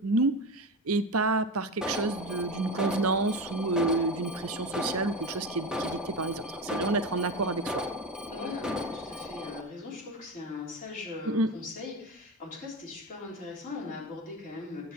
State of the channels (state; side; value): normal; both; correlation 0.22